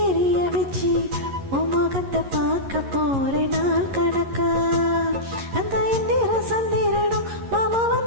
எரிய வச்சு உன் முகத்தை பார்க்க போற நாள் கணக்கா. அந்த இந்திர சந்திரனும் மாமா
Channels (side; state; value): left; late; 11 ms